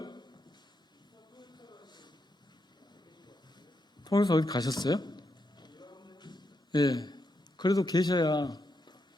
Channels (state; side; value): normal; both; correlation 0.82